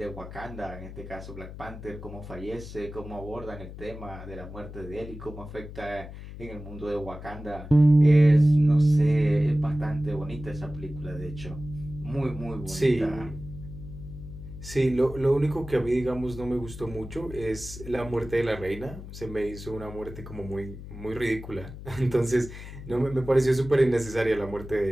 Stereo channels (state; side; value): noise; left; hum, 12 dB below the sound